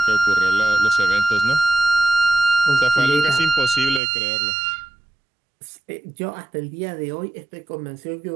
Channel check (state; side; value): drops out; left; at 4.0 s